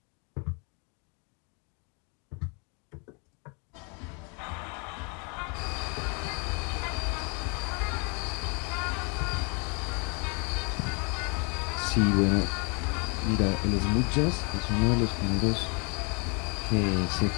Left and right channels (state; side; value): quieter; right; 34.6 dB